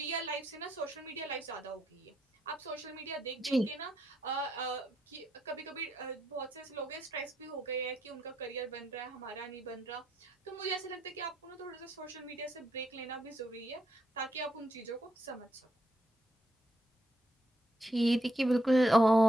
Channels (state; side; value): normal; both; correlation 0.78